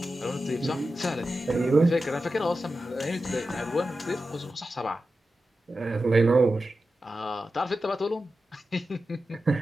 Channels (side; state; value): both; normal; correlation 0.92